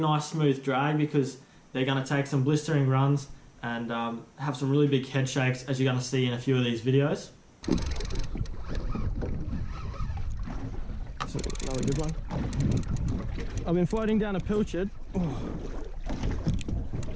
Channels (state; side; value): identical; both; correlation 1.00